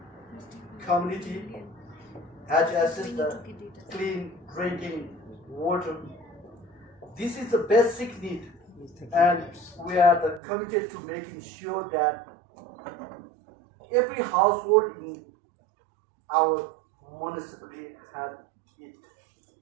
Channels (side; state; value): left; drops out; at 10.4 s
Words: community has access to clean drinking water. This is a basic need, and we are committed to making sure that every household in our municipality has it.